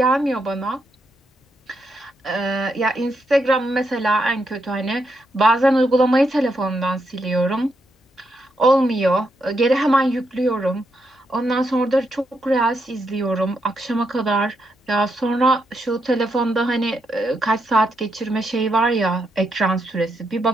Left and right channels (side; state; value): both; normal; correlation 0.80